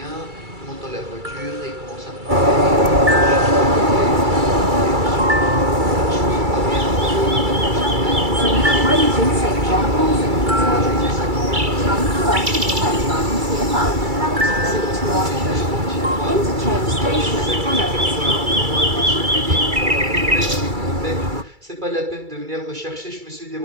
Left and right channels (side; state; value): left; late; 2.3 ms